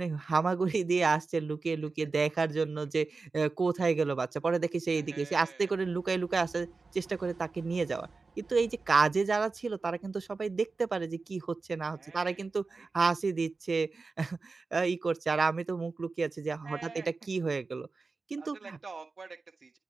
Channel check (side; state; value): left; quieter; 4.1 dB